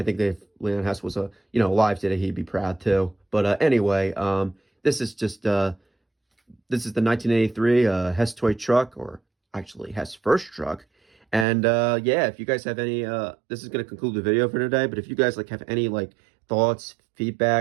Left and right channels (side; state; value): left; drops out; at 11.5 s